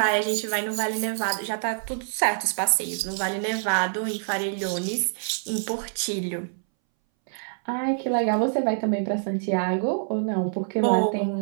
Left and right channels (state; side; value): silent; left; 61 dB below the other